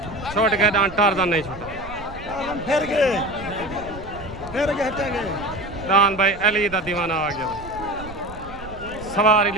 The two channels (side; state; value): right; noise; rumble, 15 dB below the sound